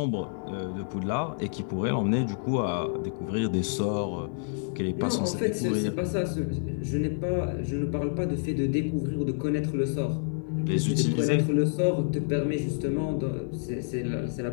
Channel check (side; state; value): right; silent; digital silence